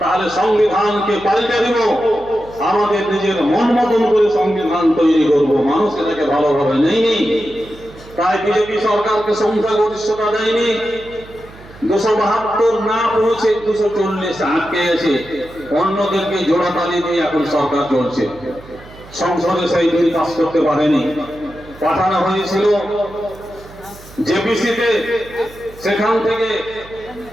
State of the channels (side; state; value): right; noise; hum, 20 dB below the sound